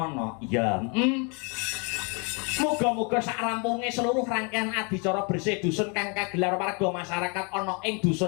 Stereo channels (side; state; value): right; quieter; 33.9 dB